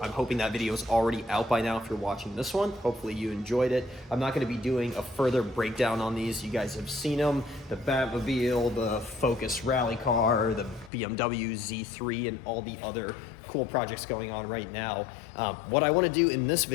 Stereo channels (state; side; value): drops out; right; at 10.9 s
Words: I'm hoping that video is already out by now if you're watching this one. Hopefully you enjoyed it. I'm not going to be doing a further breakdown on these. You guys have seen them, the Batmobile, the Focus rally car, the BMW Z3, and all the other cool projects going on right now. What I want to do in this